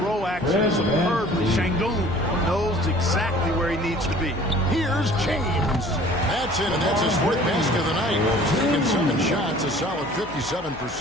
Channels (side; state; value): left; noise; hum, 19 dB below the sound